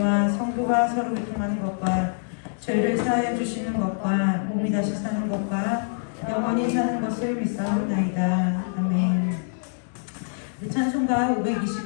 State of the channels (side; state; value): right; silent; digital silence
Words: 성도가 서로 교통하는 것과 죄를 사하여 주시는 것과 몸이 다시 사는 것과 영원히 사는 것을 믿사옵나이다. 아멘. 우리 찬송가